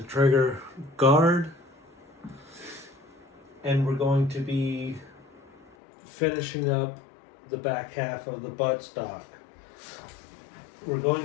trigger guard, and we're going to be finishing up the back half of the buttstock. We're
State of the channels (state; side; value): drops out; right; at 5.8 s